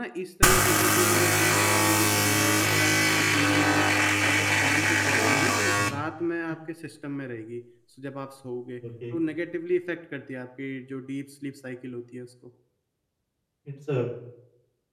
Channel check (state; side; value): identical; both; correlation 1.00